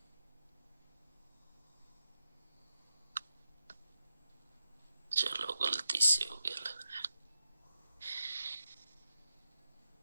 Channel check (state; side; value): inverted; both; correlation -0.87